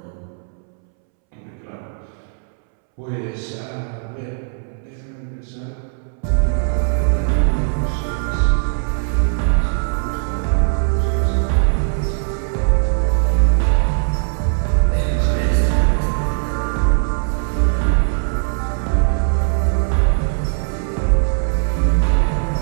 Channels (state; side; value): silent; left; 66 dB below the other